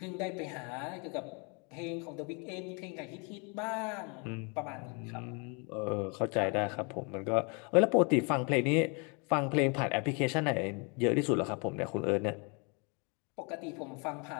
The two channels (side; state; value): right; quieter; 33.5 dB